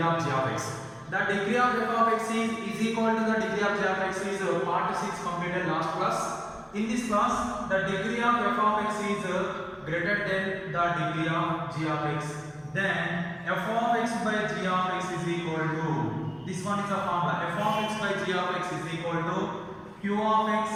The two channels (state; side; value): identical; both; correlation 1.00